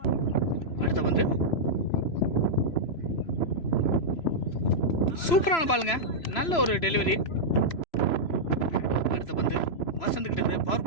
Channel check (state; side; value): late; right; 3.0 ms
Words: அடுத்த பந்து சூப்பரான பாலுங்க. நல்ல ஒரு டெலிவரி. அடுத்த பந்து வசந்த்கிட்டேருந்து பவர்